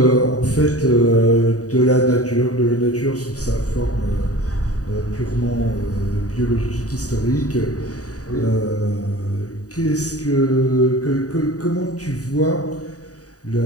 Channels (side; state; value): right; late; 0.67 ms